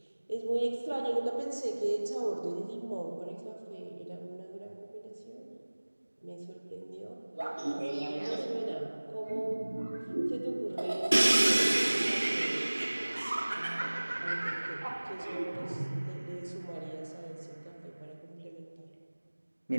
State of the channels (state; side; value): inverted; both; correlation -1.00